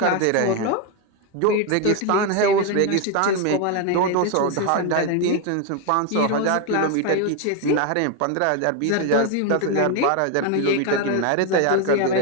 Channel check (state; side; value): different; both; correlation 0.01